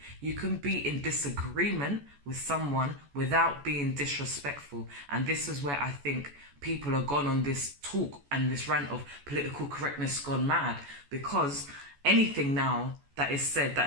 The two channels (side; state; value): left; late; 14 ms